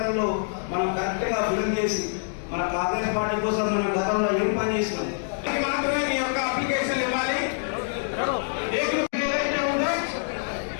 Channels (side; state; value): right; silent; 61 dB below the other